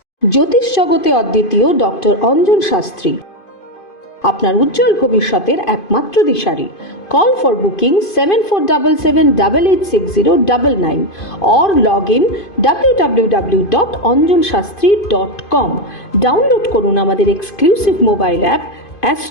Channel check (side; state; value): right; late; 2.5 ms